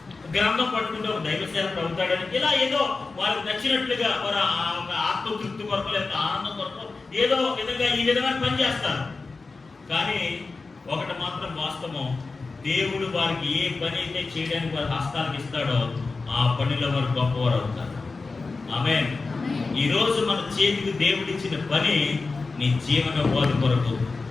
గ్రంథం పట్టుకుంటే ఒక దైవ సేవకుడు అవుతాడని, ఇలా ఏదో వాళ్ళకి నచ్చినట్లుగా వారు ఆత్మతృప్తి కొరకు లేదా ఆనందం కొరకు ఏదో విధంగా ఈ విధమైన పని చేస్తారు. కానీ ఒకటి మాత్రం వాస్తవం, దేవుడు వారికి ఏ పని అయితే చేయడానికి వారి హస్తాలకు ఇస్తాడో ఆ పనిలో వారు గొప్పవారు అవుతారు. ఆమేన్. ఈరోజు మన చేతికి దేవుడిచ్చిన పని నీ జీవన బోధ కొరకు,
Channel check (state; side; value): quieter; right; 4.0 dB